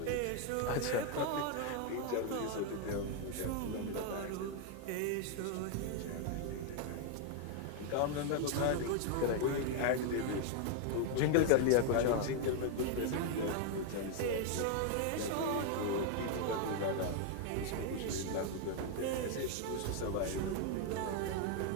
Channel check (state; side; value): different; both; correlation 0.00